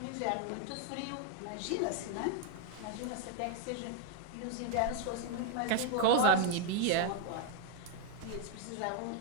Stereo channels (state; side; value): different; both; correlation 0.00